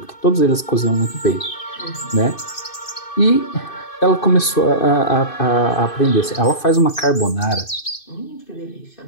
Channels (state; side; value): late; right; 2.6 ms